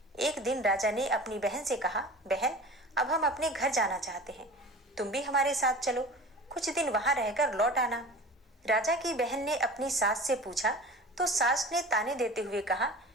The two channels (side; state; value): both; normal; correlation 0.37